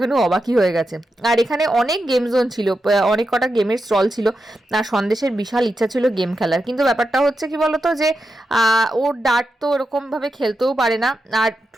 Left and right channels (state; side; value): normal; both; correlation 0.88